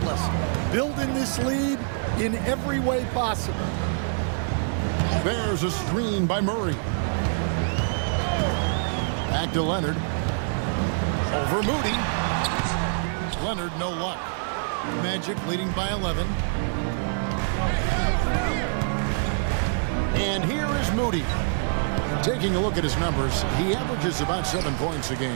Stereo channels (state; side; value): silent; left; 61 dB below the other